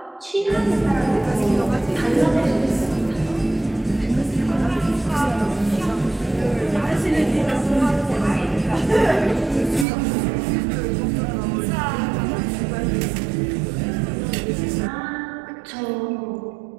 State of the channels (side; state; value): left; drops out; at 9.9 s